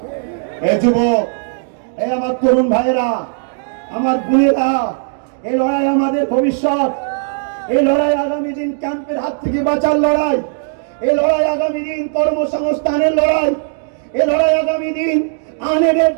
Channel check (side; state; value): left; silent; digital silence